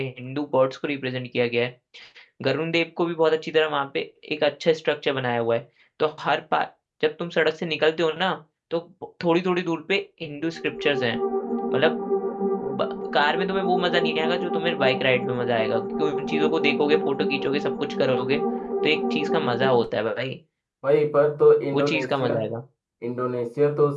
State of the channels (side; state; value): both; identical; correlation 1.00